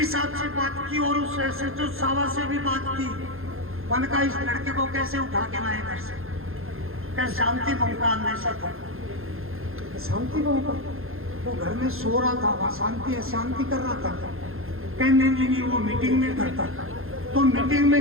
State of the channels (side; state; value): left; late; 0.61 ms